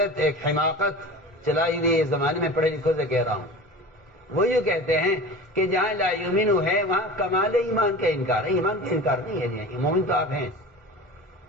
ایک حماقت چلائی ہوئی اس زمانے میں، پڑھے لکھوں سے کہہ رہا ہوں. وہ یوں کہتے ہیں کہ جہاں لا یؤمن ہے وہاں کمال ایمان کا انکار ہے. ایمان کا انکار نہیں ہے، مومن تو آپ ہیں،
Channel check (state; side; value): normal; both; correlation 0.35